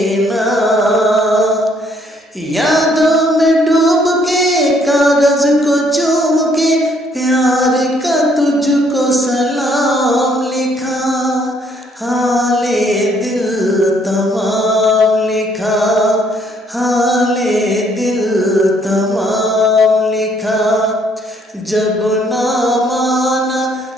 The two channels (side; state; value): both; normal; correlation 0.66